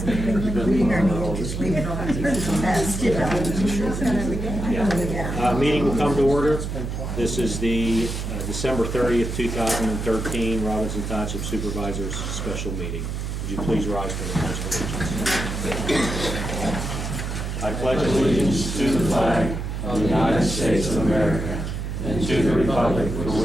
Meeting will come to order. This is the December 30th, 2013 Robinson Township Supervisors Special Meeting. Would you please rise for the Pledge of Allegiance? I pledge allegiance to the flag of the United States of America and to the republic for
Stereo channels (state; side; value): noise; right; hum, 4 dB below the sound